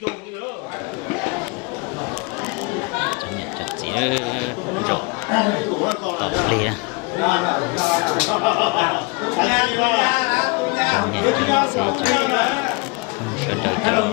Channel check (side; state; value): right; quieter; 29.0 dB